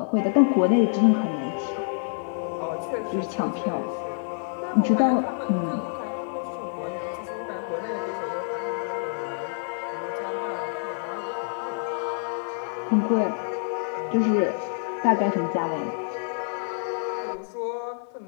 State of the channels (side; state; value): right; silent; 60 dB below the other